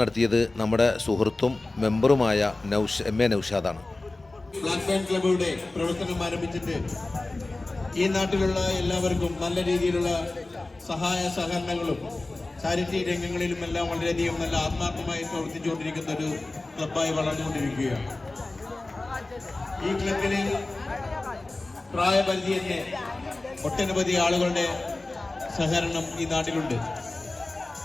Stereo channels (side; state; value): right; quieter; 3.0 dB